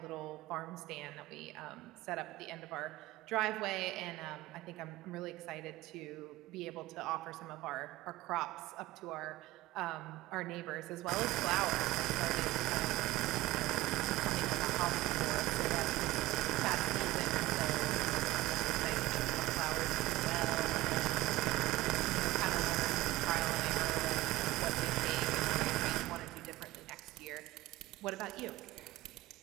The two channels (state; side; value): quieter; left; 17.9 dB